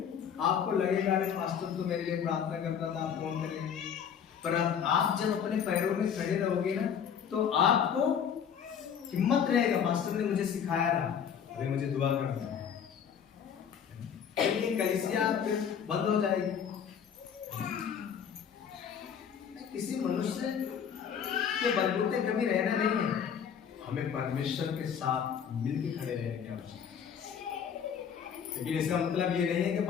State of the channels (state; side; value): quieter; right; 7.8 dB